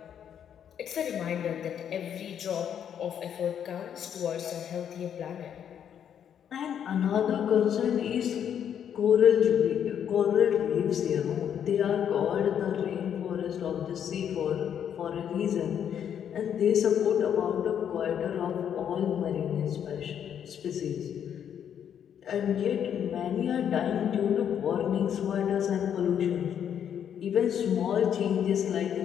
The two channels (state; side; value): quieter; right; 8.9 dB